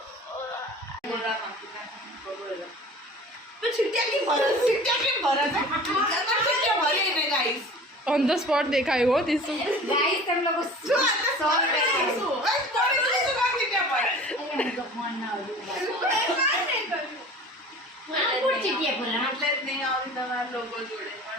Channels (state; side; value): normal; both; correlation 0.42